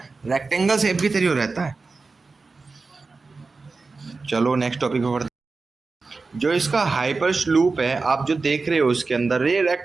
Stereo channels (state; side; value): quieter; left; 4.0 dB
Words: रेक्टेंगल शेप की तरह रहता है। चलो नेक्स्ट टॉपिक पे बढ़ते। जो इसका हाइपर लूप है आप जो देख रहे हो इसके अंदर, ये